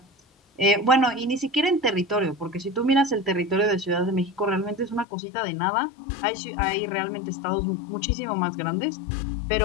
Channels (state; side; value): drops out; right; at 5.1 s